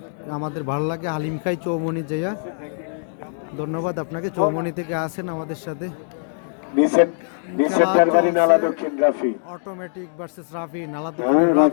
আমাদের ভালো লাগে, হালিম খাই চৌমোহনী যাইয়া। ধন্যবাদ আপনাকে, চৌমোহনী থেকে আসেন আমাদের সাথে। নিচের দরবারি নালা দক্ষিণ রাফি, অটোমেটিক ভার্সেস রাফি, নালা দক্ষিণের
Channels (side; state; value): right; silent; digital silence